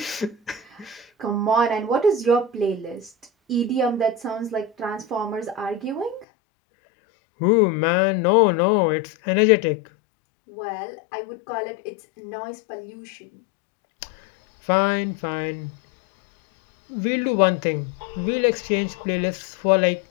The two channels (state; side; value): drops out; right; at 6.2 s